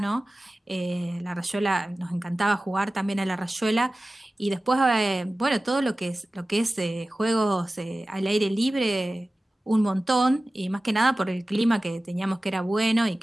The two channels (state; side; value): normal; both; correlation 0.96